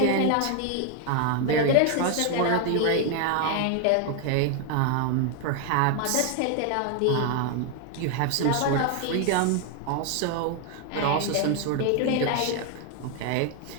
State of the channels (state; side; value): different; both; correlation 0.00